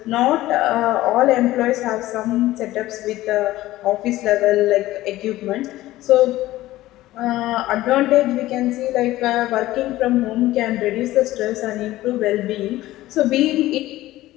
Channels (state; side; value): quieter; right; 16.2 dB